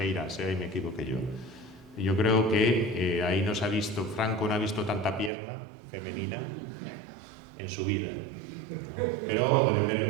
ahí me equivoqué yo. Yo creo que ahí Franco no ha visto tanta pierna femenina en su vida, ¿no? Pero pueden ver que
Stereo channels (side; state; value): left; drops out; at 5.3 s